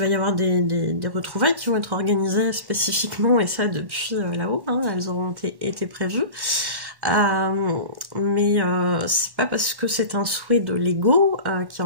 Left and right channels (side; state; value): left; late; 1.1 ms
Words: y avoir des retrouvailles qui vont être organisées spécifiquement, et ça depuis là-haut, hein, elles auront été prévues. Mais c'est pas parce que c'est un souhait de l'ego qui